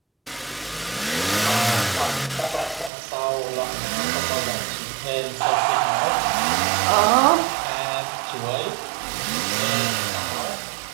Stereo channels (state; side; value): drops out; left; at 2.9 s